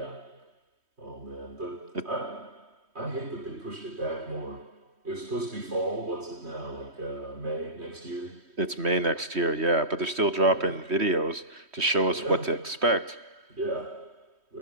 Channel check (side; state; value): left; late; 3.1 ms